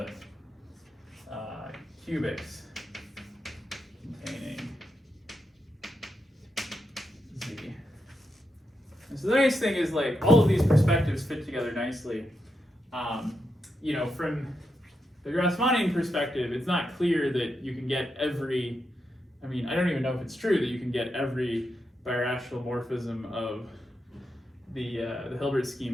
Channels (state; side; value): normal; both; correlation 0.85